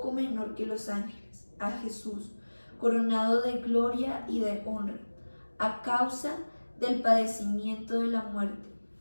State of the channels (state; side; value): inverted; both; correlation -1.00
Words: menor que los ángeles, a Jesús, coronado de gloria y de honra, a causa del padecimiento de la muerte,